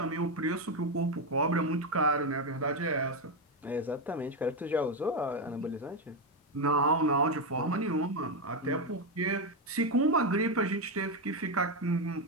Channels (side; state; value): both; normal; correlation 0.08